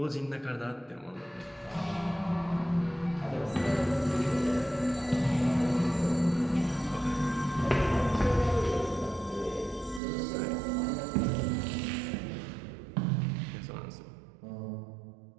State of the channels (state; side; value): drops out; left; at 10.0 s